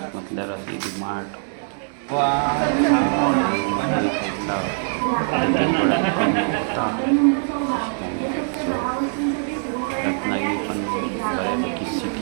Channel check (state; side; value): silent; left; 64 dB below the other